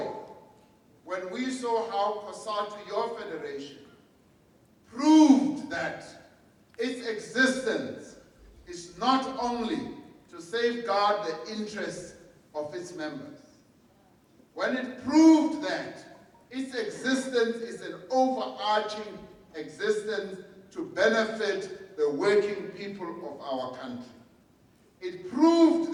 when we saw how COSATU, your federation, proved that its existence is not only to safeguard the interests of its members. When it proved that its existence is an overarching existence to benefit the working people of our country. It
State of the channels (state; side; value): identical; both; correlation 1.00